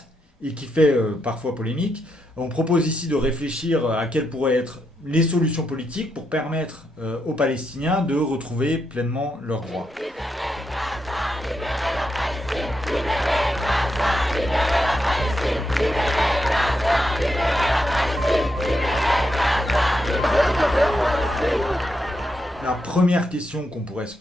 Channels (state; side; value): normal; both; correlation 0.82